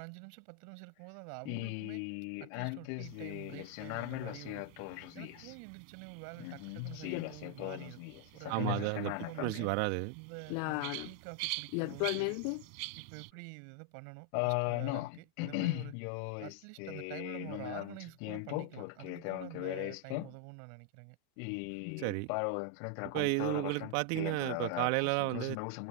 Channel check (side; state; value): both; different; correlation 0.00